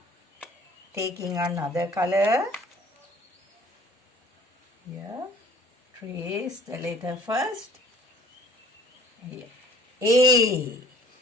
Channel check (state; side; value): normal; both; correlation 0.52